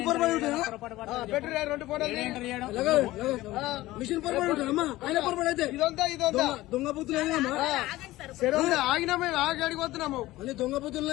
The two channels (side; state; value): right; quieter; 17.4 dB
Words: మిషన్ దొంగ బుద్ధులు ఆగినాము, ఆగి అడిగి వస్తున్నాము. అన్ని దొంగ